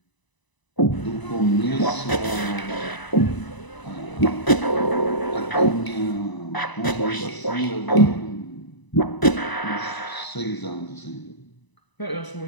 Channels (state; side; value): late; right; 1.0 ms